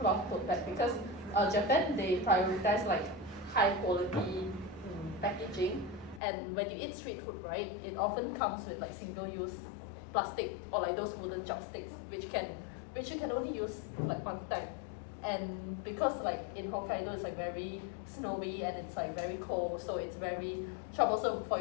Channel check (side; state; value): right; drops out; at 6.2 s